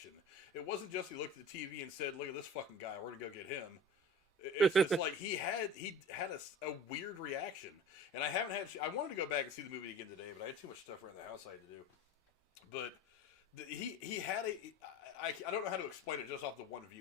It wasn't just he looked at the TV and said, "Look at this fucking guy. We're gonna go get him." It's like he had a weird reaction, and I wanted to go back and see the movie again today, but I had too much stuff around the house I had to do. But he had I don't know how to explain it just off the one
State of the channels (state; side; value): normal; both; correlation 0.38